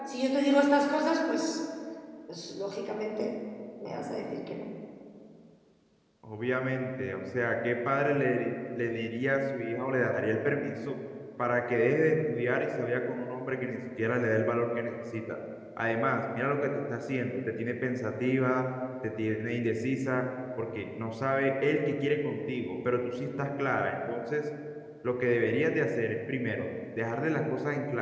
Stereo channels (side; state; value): both; identical; correlation 1.00